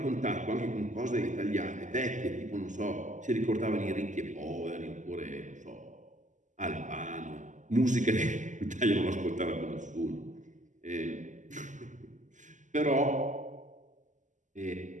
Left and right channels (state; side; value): late; left; 0.36 ms